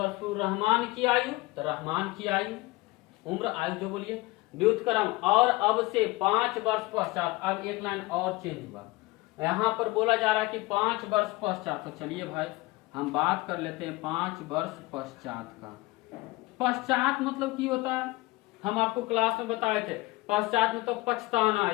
पूर्व रहमान की आयु, तो रहमान की आयु, उम्र, आयु जो बोलिए, व्युत्क्रम और अब से 5 वर्ष पश्चात। अब एक लाइन और चेंज हुआ, यहाँ पर बोला जा रहा है कि 5 वर्ष पश्चात। तो चलिए भाई हम बात कर लेते हैं 5 वर्ष पश्चात का। पश्चात मतलब की होता है, हम आपको क्लास में बताए थे। पश्चात में तो पछताना,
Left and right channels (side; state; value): right; quieter; 21.5 dB